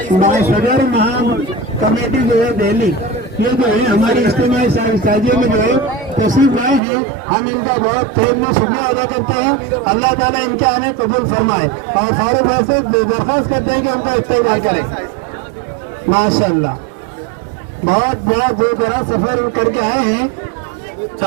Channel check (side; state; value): left; drops out; at 6.8 s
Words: صدر مہان کمیٹی جو ہے دہلی، یہ جو ہے ہماری اجتماعی سازی میں جو ہے تشریف لائے ہیں. ہم ان کا بہت تہہ میں شکریہ ادا کرتے ہیں. اللہ تعالیٰ ان کے آنے قبول فرمائے اور فاروق بھائی سے درخواست کرتے ہیں کہ ان کا استقبال کریں. ماشاء اللہ بہت بڑا دور دراز سفر کر کے آئے ہیں.